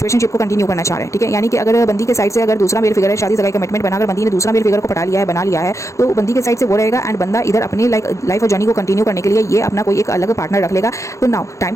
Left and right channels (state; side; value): late; right; 0.15 ms